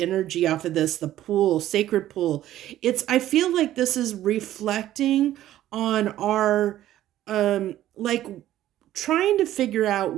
off of this, the pool, sacred pool. I feel like this is reflecting on our, like, trying to figure out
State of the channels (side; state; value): left; quieter; 13.3 dB